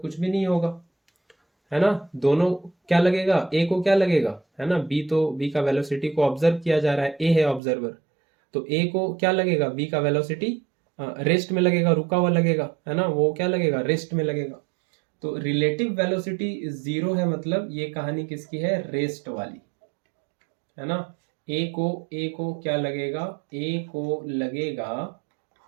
भी नहीं होगा, है ना। दोनों क्या लगेगा, a को क्या लगेगा, है ना, b का वेलोसिटी को ऑब्जर्व किया जा रहा है, a है ऑब्जर्वर, तो a को क्या लगेगा, b का वेलोसिटी रेस्ट में लगेगा, रुका हुआ लगेगा, है ना, वो क्या लगेगा, रेस्ट में लगेगा। तो रिलेटिव वेलोसिटी 0 है, मतलब ये कहानी किसकी है, रेस्ट वाली, है ना। a को क्या लगेगा, a को लगेगा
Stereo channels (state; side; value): drops out; left; at 7.6 s